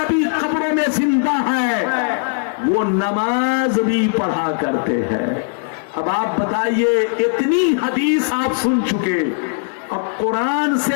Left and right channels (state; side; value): silent; right; 67 dB below the other